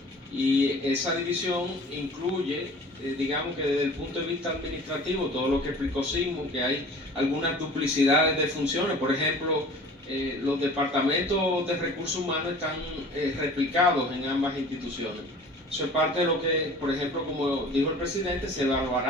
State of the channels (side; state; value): both; normal; correlation 0.44